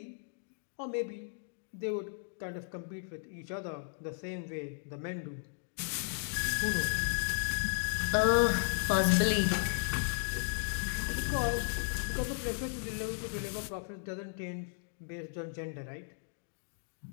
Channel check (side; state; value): right; silent; digital silence